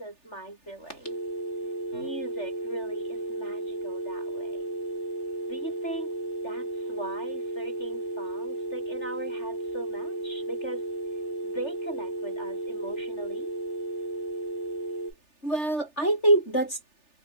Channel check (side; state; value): right; late; 3.4 ms